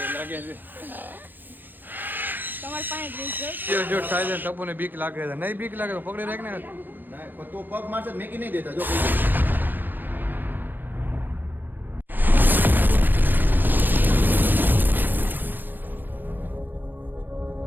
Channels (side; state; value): left; late; 0.090 ms